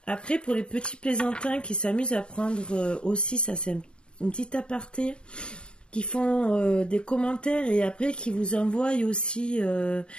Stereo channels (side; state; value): right; late; 0.052 ms